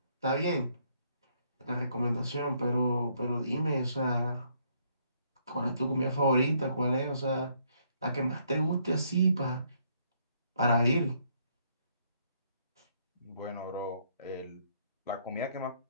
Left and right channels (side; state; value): both; inverted; correlation -0.70